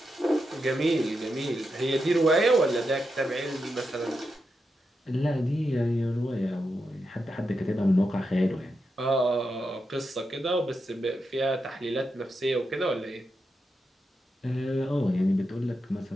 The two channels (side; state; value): both; normal; correlation 0.86